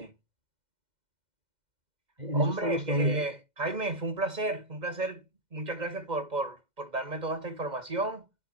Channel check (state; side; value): late; left; 2.1 ms